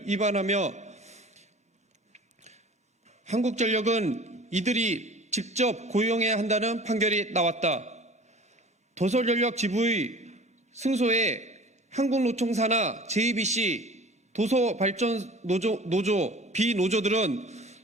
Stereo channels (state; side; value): normal; both; correlation 0.43